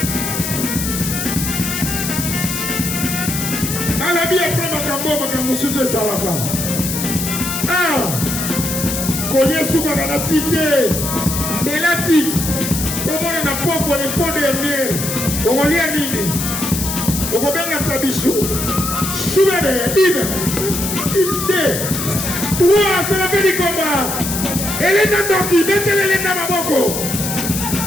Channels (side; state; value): left; noise; hiss, 4 dB below the sound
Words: Alabi après makambo sujet Zalaka. Collier sous la tite. Mais la tite. Comment on a pas pour les fonds derniers. On va lire nini. On va bien la tabichou. Choubebe, une, deux, trois, c'est la fin du combat. Elena Doki, mettez-le Elena Maboko.